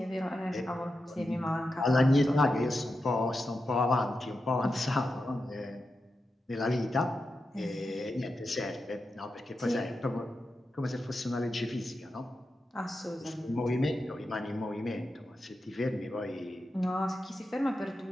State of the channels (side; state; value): both; normal; correlation 0.89